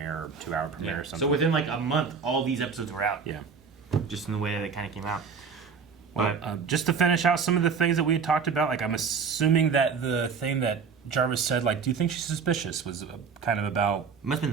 or 2-hour premiere or something. So within like a month, all these episodes were out. Yeah. Just in the way that they kind of came out. Well, just to finish out some of the things that we had talked about, like I'm assuming that the thing that Jarvis said, like, do you think she's suspicious, was kind of about... Must have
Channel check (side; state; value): left; quieter; 5.8 dB